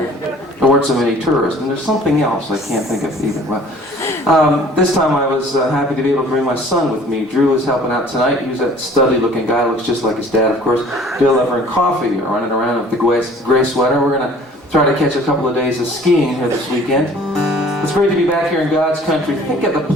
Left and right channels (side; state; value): both; normal; correlation 0.51